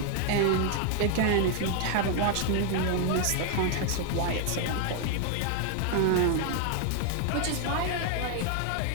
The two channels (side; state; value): both; different; correlation 0.00